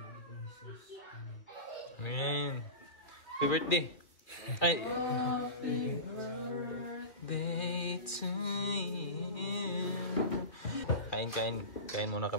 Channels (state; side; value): late; right; 2.4 ms